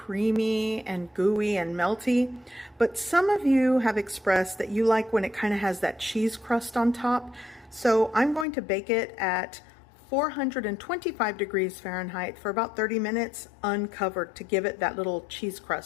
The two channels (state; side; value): drops out; right; at 8.5 s